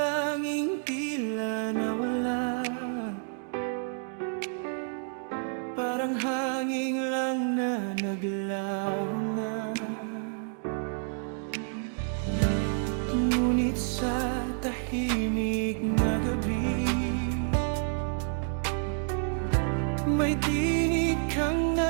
tila nawala, parang hangin lang na naglaho na. Ngunit sa tahimik na gabi, may tinig kang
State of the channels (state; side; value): silent; left; 58 dB below the other